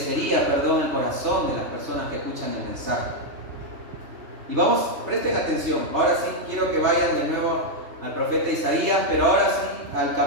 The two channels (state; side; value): late; left; 3.2 ms